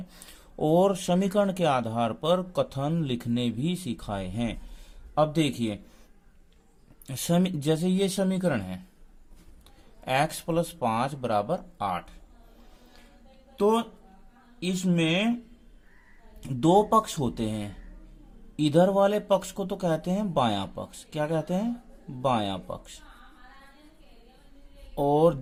और समीकरण के आधार पर कथन लिखने भी सिखाए हैं। अब देखिए, जैसे ये समीकरण है x + 5 = 8, तो इसमें दो पक्ष होते हैं। इधर वाले पक्ष को तो कहते हैं बायां पक्ष। क्या कहते हैं? बायां पक्ष। और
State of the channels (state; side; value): identical; both; correlation 1.00